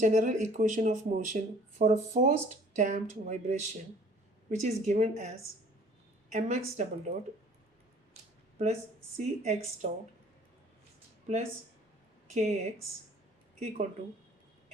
equation of motion for a forced damped vibration, which is given as mx double dot plus cx dot plus kx equal to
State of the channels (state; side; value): normal; both; correlation 0.53